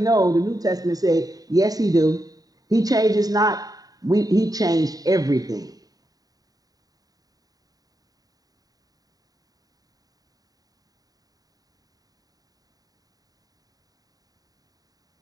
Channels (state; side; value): late; left; 0.18 ms